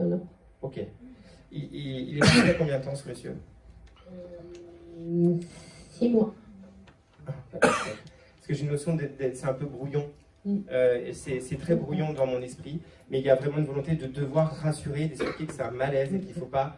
en avoir. Ok. Il est parti il y a combien de temps, ce monsieur? 6 mois. Parce que j'ai une notion c'est un peu brouillon. C'est très brouillon dans mon esprit, mais il y a vraiment une volonté de devoir rassurer, d'expliquer que c'est un malaise et qu'il ne faut pas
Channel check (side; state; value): both; identical; correlation 1.00